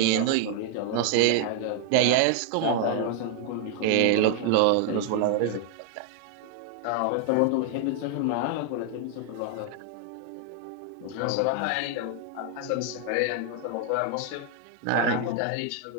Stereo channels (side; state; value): both; different; correlation 0.00